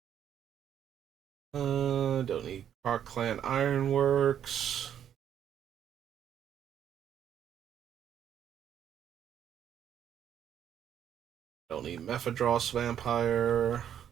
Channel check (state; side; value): quieter; left; 9.6 dB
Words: Don't need Park Clan Ironworks. Don't need Mephidros Vampire.